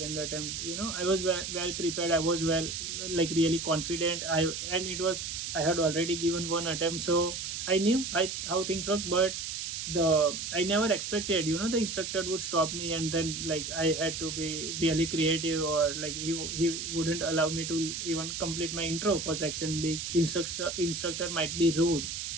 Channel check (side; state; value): right; noise; hiss, 5 dB below the sound